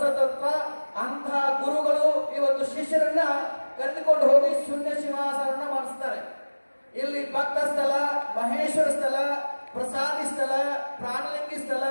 ತತ್ವ. ಅಂತಹ ಗುರುಗಳು ಇವತ್ತು ಶಿಷ್ಯರನ್ನ ಕರೆದುಕೊಂಡು ಹೋಗಿ ಶೂನ್ಯ ಸಿಂಹಾಸನ ಮಾಡಿಸ್ತಾರೆ. ಇಲ್ಲಿ ಭಕ್ತ ಸ್ಥಳ, ಮಹೇಶ್ವರ ಸ್ಥಳ, ಪ್ರಸಾದಿ ಸ್ಥಳ, ಪ್ರಾಣಲಿಂಗಿ ಸ್ಥಳ,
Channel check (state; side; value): inverted; both; correlation -1.00